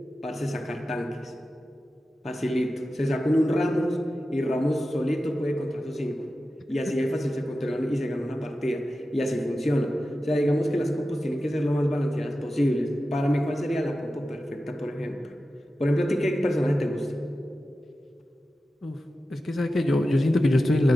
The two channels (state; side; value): normal; both; correlation 0.93